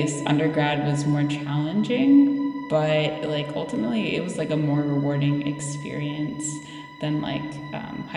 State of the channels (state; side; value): identical; both; correlation 1.00